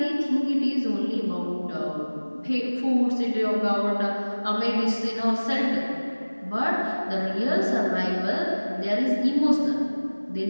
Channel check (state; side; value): inverted; both; correlation -1.00